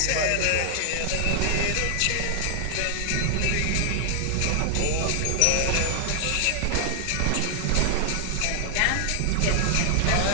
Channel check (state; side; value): different; both; correlation 0.00